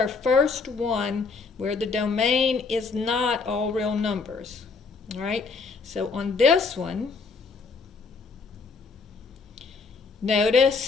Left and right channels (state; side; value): quieter; right; 4.7 dB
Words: first one where the domain is not all real numbers. All right, so on this one,